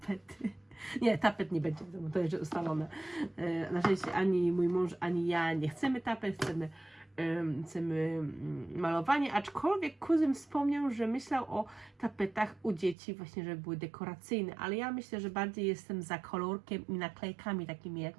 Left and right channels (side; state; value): left; drops out; at 13.0 s